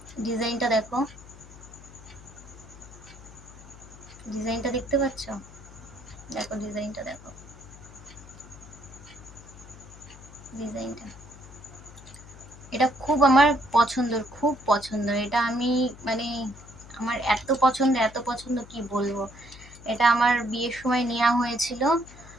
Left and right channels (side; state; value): left; noise; hum, 19 dB below the sound